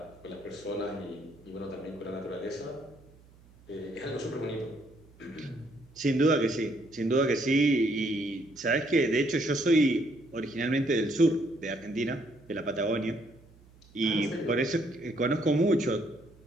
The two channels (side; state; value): right; noise; hum, 26 dB below the sound